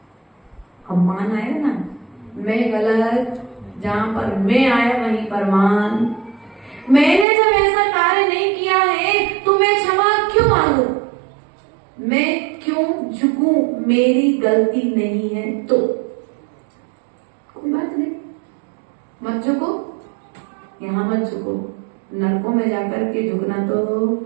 अब मान आया ना, मैं गलत, जहां पर मैं आया वहीं पर मान। मैंने जब ऐसा कार्य नहीं किया है तो मैं क्षमा क्यों मांगू? मैं क्यों झुकूं? मेरी गलती नहीं है तो कोई बात नहीं, मत झुको, यहाँ मत झुको, नरकों में जाकर के झुकना तो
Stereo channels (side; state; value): left; drops out; at 7.2 s